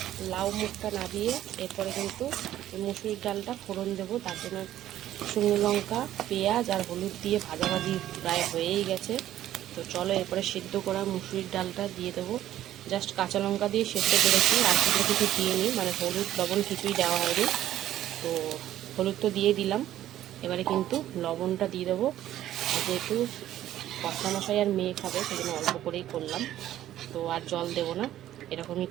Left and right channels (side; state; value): left; quieter; 12.8 dB